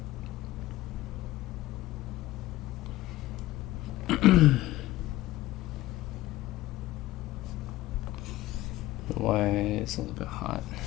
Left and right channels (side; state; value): right; quieter; 16.5 dB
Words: Why it's a little bit hot.